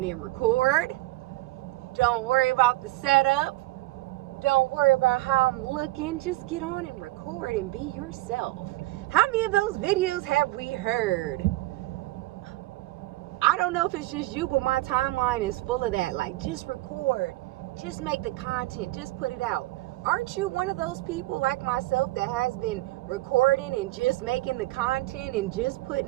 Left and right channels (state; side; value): quieter; left; 18.7 dB